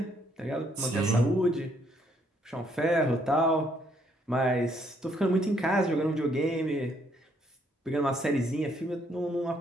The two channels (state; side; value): normal; both; correlation 0.69